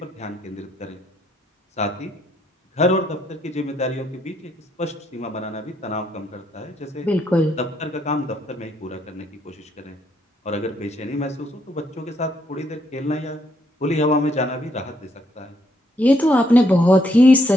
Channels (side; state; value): both; normal; correlation 0.73